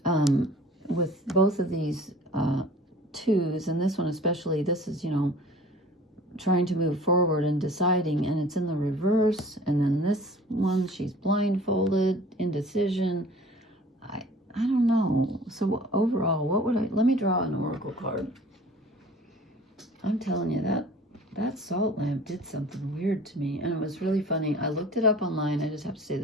With both of these twos, and this one especially, this is, trying to move forward and deciding, and it's in the reverse. And then this one, she's blindfolded, indecision. I don't know. So overall, let me draw an oracle card. I'm telling you, that salt lamp did something weird to me, and it was really funny. I looked it up online. I just have to say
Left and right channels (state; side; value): normal; both; correlation 0.46